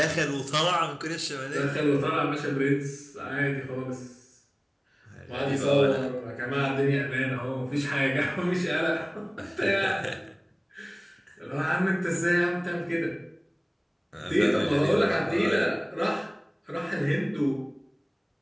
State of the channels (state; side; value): identical; both; correlation 1.00